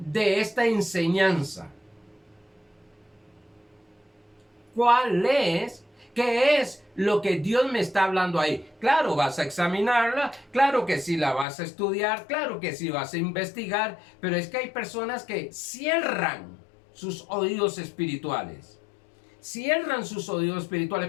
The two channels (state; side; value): drops out; right; at 11.5 s